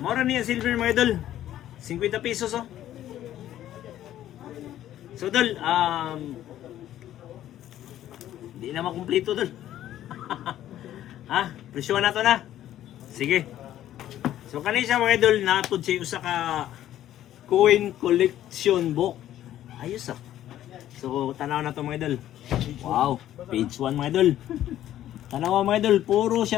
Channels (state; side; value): quieter; right; 12.4 dB